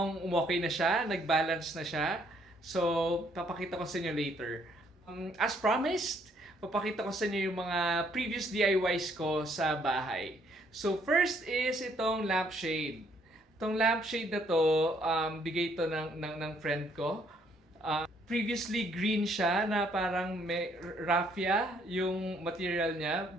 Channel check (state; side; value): normal; both; correlation 0.67